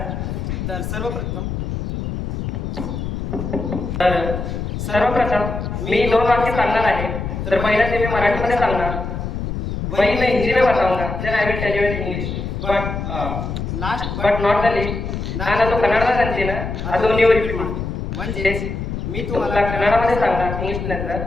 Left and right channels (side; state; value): left; noise; rumble, 4 dB below the sound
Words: तर सर्वप्रथम तर सर्वप्रथम मी दोन वाक्य सांगणार आहे. तर पहिलं ते मी मराठीमध्ये सांगणार, वही मैं हिंदी में बताऊंगा, then I will tell you in English. But not the least, ನಾನು ಅದು ಕನ್ನಡದಾಗ ಅಂತೀನಿ, ಅದು ನೀವು रिपीट ಮಾಡಿ. म्हणजे मी तुम्हाला कन्नडमध्ये सांगणार इंग्लिश नंतर,